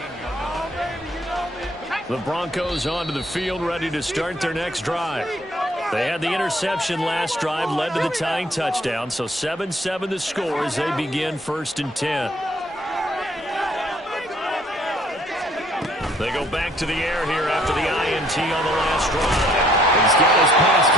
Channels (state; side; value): normal; both; correlation 0.63